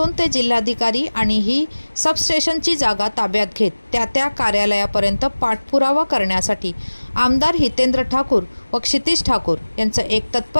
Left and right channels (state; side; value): inverted; both; correlation -1.00